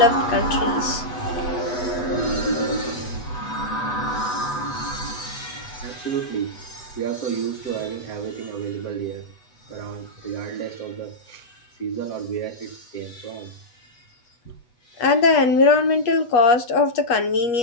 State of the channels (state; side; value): late; right; 8.0 ms